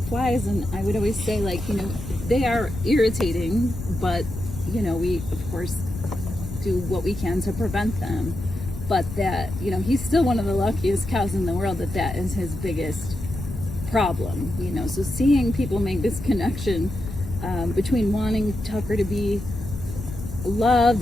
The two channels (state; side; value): noise; left; rumble, 8 dB below the sound